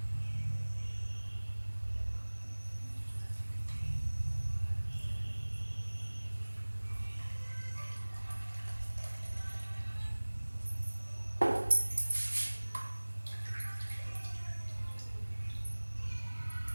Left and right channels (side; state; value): both; inverted; correlation -1.00